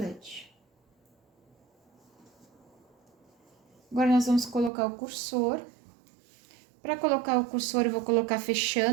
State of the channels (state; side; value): drops out; left; at 4.7 s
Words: Agora, nós vamos colocar o cursor. Para colocar o cursor, eu vou colocar